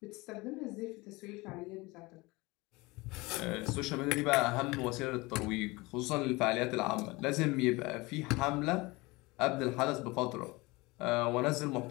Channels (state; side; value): quieter; right; 23.2 dB